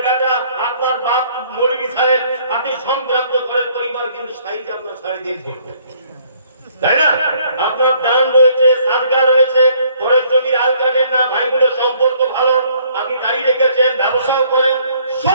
বেটা, আপনার বাপ মৌলভী সাহেব, আপনি সম্ভ্রান্ত ঘরের পরিবার, কিন্তু সাইজ আপনার 3.5 ফুট, তাই না? আপনার দান রয়েছে, সাদকা রয়েছে, ঘরের জমির আল কাটেন না, ভাই বোনের সম্পর্ক ভালো, আপনি গাড়ি রেখেছেন, ব্যবসাও করেন,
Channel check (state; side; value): inverted; both; correlation -0.62